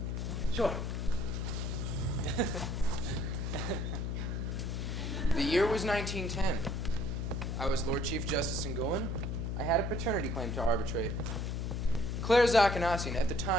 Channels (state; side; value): noise; left; hum, 1 dB below the sound